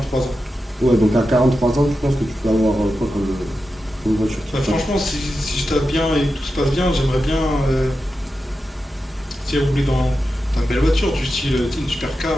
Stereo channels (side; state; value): both; normal; correlation 0.90